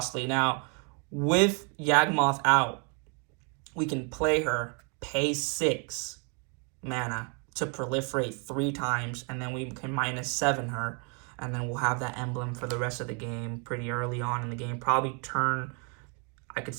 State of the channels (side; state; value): left; quieter; 37.3 dB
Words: Now, with Yawgmoth out, we can play her, pay 6 mana to proliferate 3 times, and then we can -7 her, and then we'll have that emblem for the rest of the game pretty early on in the game. Probably turn